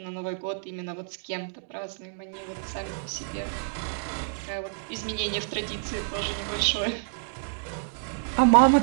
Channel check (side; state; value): left; silent; digital silence